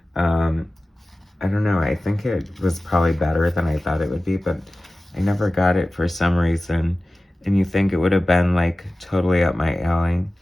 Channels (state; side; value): normal; both; correlation 0.96